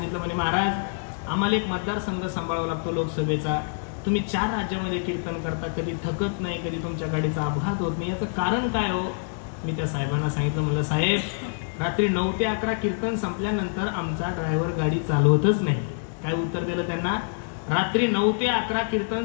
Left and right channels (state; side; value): silent; right; 61 dB below the other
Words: म्हणे महाराज आम्हाला एक मतदारसंघ सांभाळावा लागतो लोकसभेचा. तुम्ही 4 राज्यामध्ये कीर्तन करता, कधी थकत नाही, कधी तुमच्या गाडीचा अपघात होत नाही, याचं कारण काय हो. मी त्या साहेबांना सांगितलं, म्हणलं साहेब रात्री 9 ते 11 कीर्तन संपल्यानंतर आमचा ड्रायव्हर गाडी चालवतच नाही. काय उत्तर दिलं त्यांना, रात्री 9 ते 11 कीर्तन